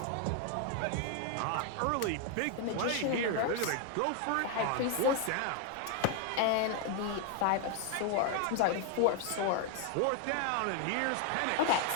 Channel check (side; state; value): both; different; correlation 0.01